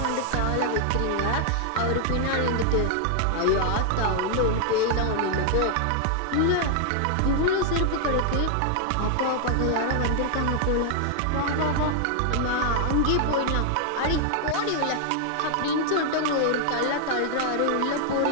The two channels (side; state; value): both; different; correlation 0.00